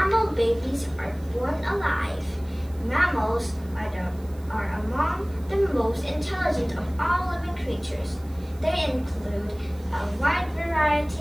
babies are born alive. Mammals are among the most intelligent of all living creatures. They include a wide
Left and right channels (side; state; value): right; noise; hiss, 26 dB below the sound